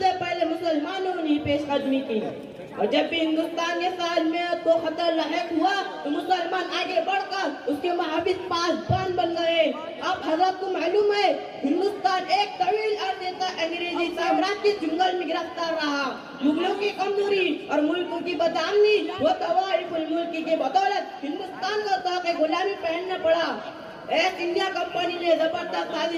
پہلے مسلمانوں نے پیش قدمی کی، اور جب بھی ہندوستان کے سالمیت کو خطر لاحق ہوا تو مسلمان آگے بڑھ کر اس کے محافظ پاسبان بن گئے۔ اب حضرت کو معلوم ہے ہندوستان ایک طویل عرصے تک انگریزی سامراج کے جنگل میں گرفتار رہا۔ مغلوں کی کمزوری اور ملکوں کی بدامنی و طوائف الملک کی بدولت ہندوستان کو طاق غلامی پہننا پڑا۔ ایسٹ انڈیا کمپنی نے زبردست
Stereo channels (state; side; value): identical; both; correlation 1.00